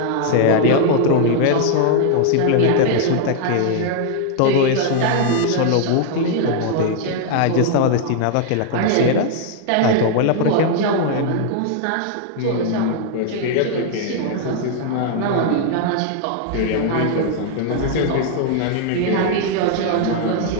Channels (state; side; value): different; both; correlation 0.00